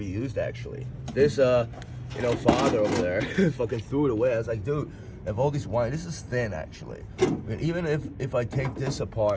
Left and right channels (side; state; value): both; identical; correlation 1.00